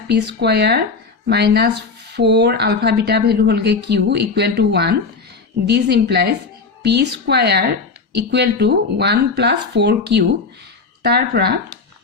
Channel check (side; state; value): right; quieter; 4.5 dB